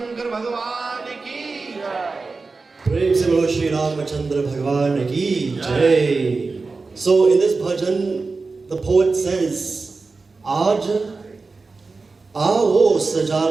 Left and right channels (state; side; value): quieter; left; 4.0 dB